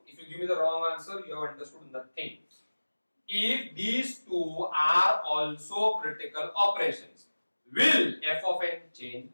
if you give me the wrong answer, you have understood nothing. If these two are also critical operations, will f of n change?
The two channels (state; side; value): inverted; both; correlation -1.00